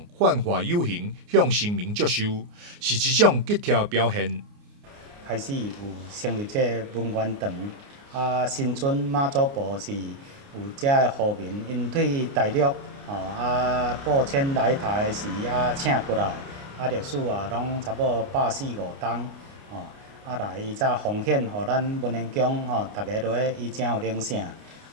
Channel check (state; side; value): late; left; 29 ms